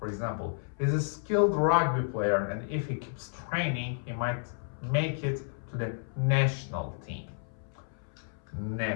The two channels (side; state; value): right; silent; 57 dB below the other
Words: For example, he's a skilled rugby player, and if he keeps training, he might make it to the national team.